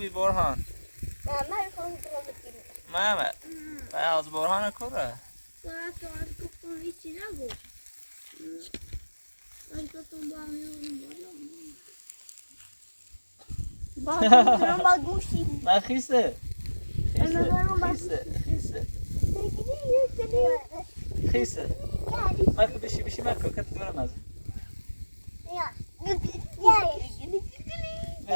برهان محمد از برهان کوره من خیسه خیسه مکو بشی مکو کت دورم از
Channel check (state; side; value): inverted; both; correlation -1.00